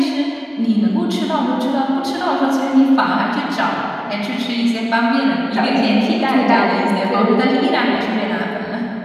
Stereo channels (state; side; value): identical; both; correlation 1.00